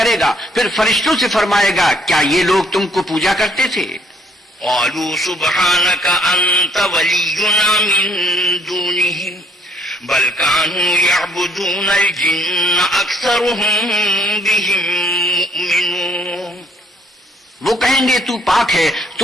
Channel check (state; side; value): normal; both; correlation 0.65